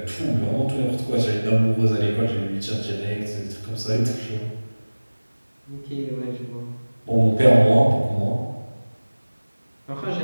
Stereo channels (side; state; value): both; inverted; correlation -1.00